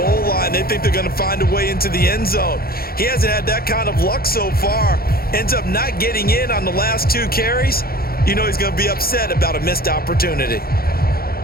line. They think they're going to find a way into the end zone. He hasn't had that kind of luck so far. Ends up not getting in on the last 2 carries. You know he's going to be upset about a missed opportunity.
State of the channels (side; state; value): right; late; 0.44 ms